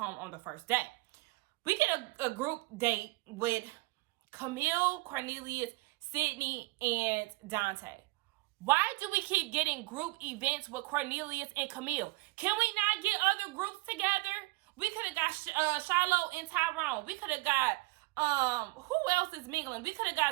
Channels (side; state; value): left; quieter; 23.6 dB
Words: on the first day. We get a group date with Camille, Cornelius, Sydney, and Dante. Why do we keep getting group events with Cornelius and Camille? Can we not get other groups together? We could have got Shiloh and Tyrone. We could have got, who else is mingling? We could have